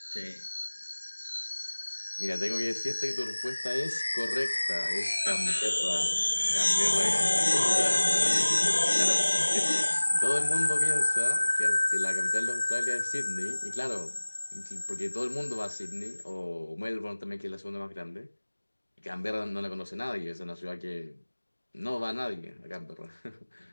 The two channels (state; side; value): inverted; both; correlation -1.00